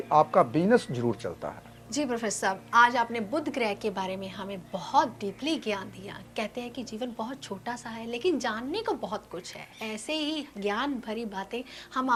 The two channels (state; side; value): identical; both; correlation 1.00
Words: आपका बिजनेस जरूर चलता है। जी प्रोफेसर साहब, आज आपने बुध ग्रह के बारे में हमें बहुत डीपली ज्ञान दिया। कहते हैं कि जीवन बहुत छोटा सा है लेकिन जानने को बहुत कुछ है। ऐसे ही ज्ञान भरी बातें हम